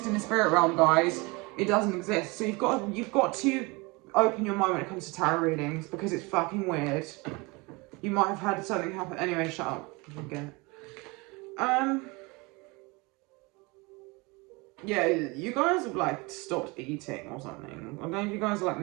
in the spirit realm, guys. It doesn't exist. So you've got to open your mind when it comes to tarot readings, because it's fucking weird. You might have had something happen. Anyway, shut up. Again. Yeah, you guys have like stopped eating or something. I don't know if you guys are like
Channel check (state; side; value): quieter; left; 26.2 dB